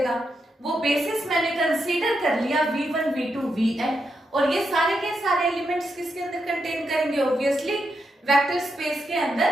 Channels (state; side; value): normal; both; correlation 0.83